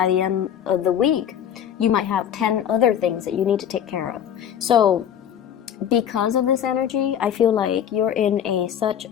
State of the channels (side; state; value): right; quieter; 9.3 dB